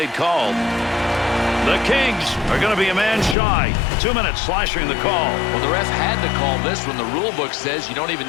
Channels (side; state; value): right; drops out; at 3.4 s